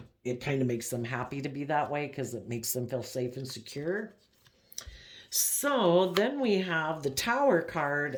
it kind of makes them happy to be that way because it makes them feel safe and secure. So then we have the Tower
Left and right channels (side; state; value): both; identical; correlation 1.00